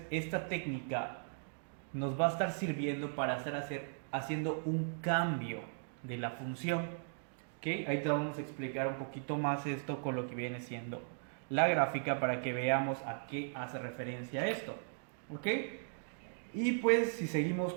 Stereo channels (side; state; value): left; silent; digital silence